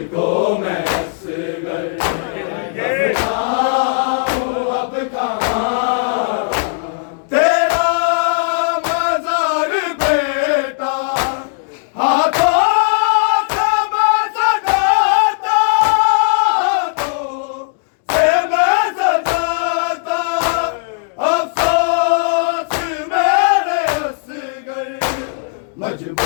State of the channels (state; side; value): silent; right; digital silence